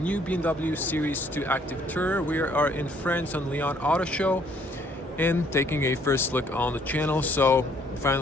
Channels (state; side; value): normal; both; correlation 0.64